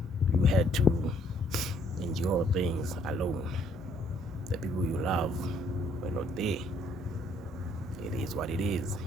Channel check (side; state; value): both; normal; correlation 0.65